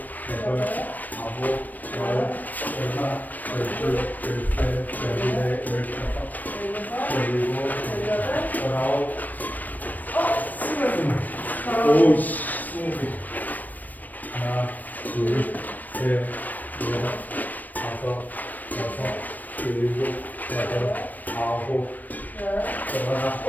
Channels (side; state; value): right; late; 0.084 ms